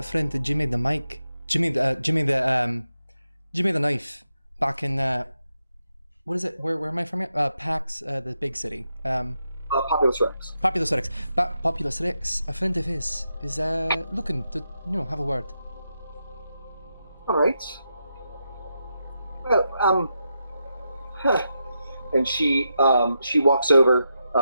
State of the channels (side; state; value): both; inverted; correlation -0.85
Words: friend of Jimmy the mic, Jimmy the knife, back in what is it? Where am I from? Pax, the big city. Populous Rex. Populous Rex. Populous Rex. A friend of his is looking to have a word. All right. Well, and she walks over.